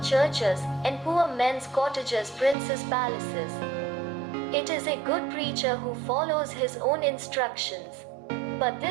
churches, and poor men's cottages princes' palaces. It is a good preacher who follows his own instructions. But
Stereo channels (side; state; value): left; drops out; at 2.6 s